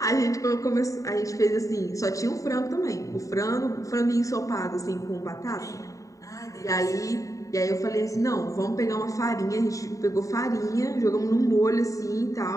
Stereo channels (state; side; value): late; right; 0.16 ms